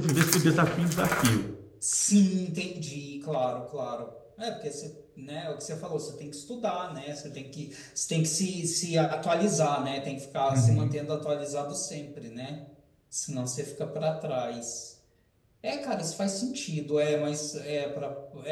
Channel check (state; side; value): identical; both; correlation 1.00